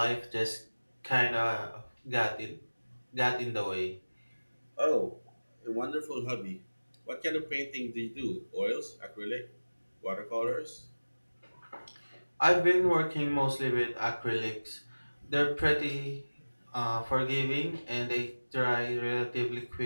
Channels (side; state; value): both; inverted; correlation -1.00